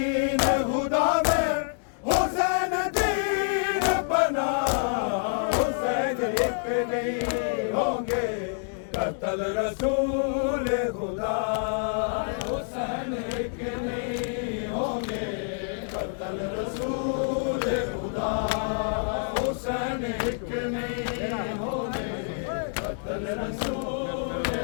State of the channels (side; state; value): right; silent; digital silence